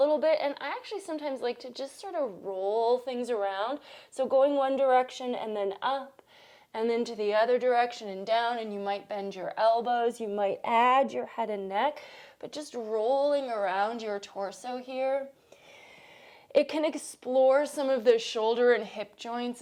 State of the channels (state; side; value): identical; both; correlation 1.00